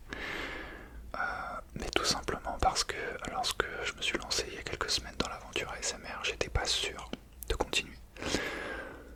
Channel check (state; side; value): identical; both; correlation 1.00